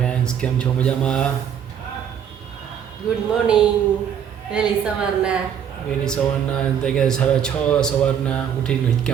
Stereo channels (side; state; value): left; quieter; 8.6 dB